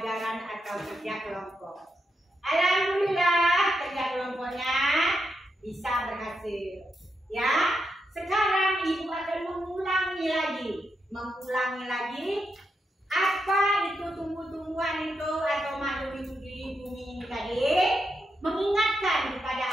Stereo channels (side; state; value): both; normal; correlation 0.84